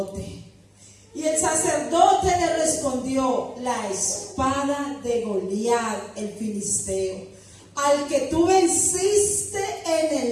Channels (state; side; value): identical; both; correlation 1.00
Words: Y el sacerdote le respondió, la espada de Goliat, el filisteo, al que tú venciste en